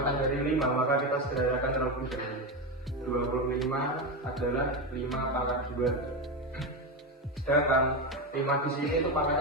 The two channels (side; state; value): both; normal; correlation 0.14